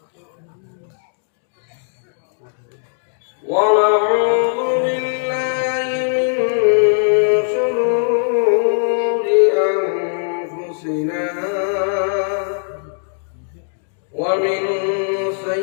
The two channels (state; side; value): silent; right; digital silence